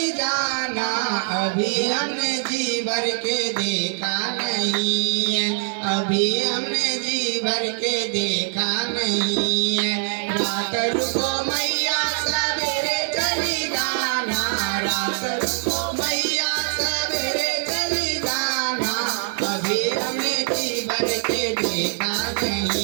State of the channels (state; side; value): silent; left; digital silence